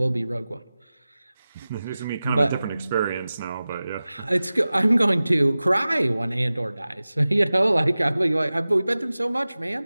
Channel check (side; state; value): both; inverted; correlation -0.96